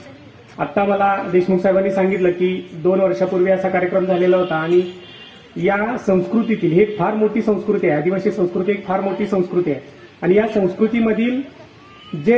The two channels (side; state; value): both; identical; correlation 1.00